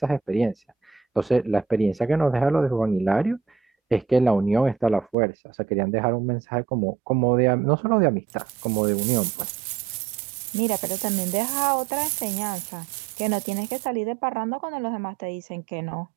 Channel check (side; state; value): left; drops out; at 5.2 s